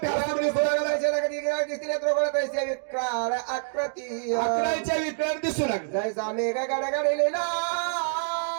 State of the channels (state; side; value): silent; left; digital silence